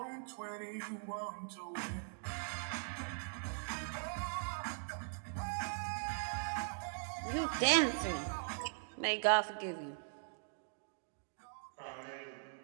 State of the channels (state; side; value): silent; left; digital silence